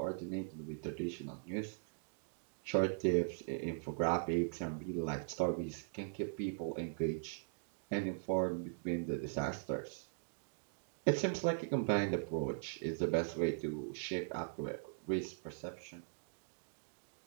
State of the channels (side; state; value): left; silent; digital silence